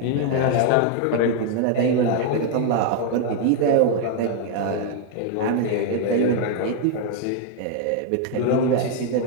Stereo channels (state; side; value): different; both; correlation 0.00